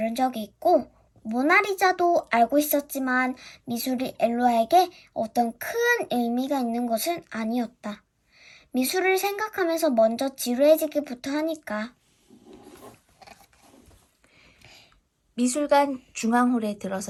적이 있고 모나리자도 알고 있었지만 미술이 엘루아에게 어떤 큰 의미가 있는 것은 아니었다. 미술을 생각하면서 먼저 지루해지기부터 하니까. 미술관 중앙홀에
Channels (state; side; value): identical; both; correlation 1.00